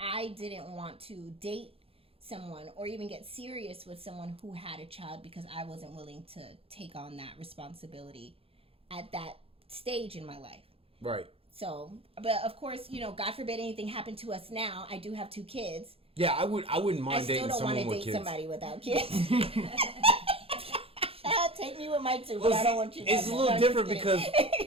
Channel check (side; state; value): left; late; 0.27 ms